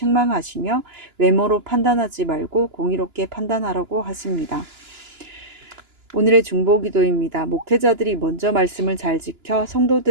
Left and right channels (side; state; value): left; late; 2.9 ms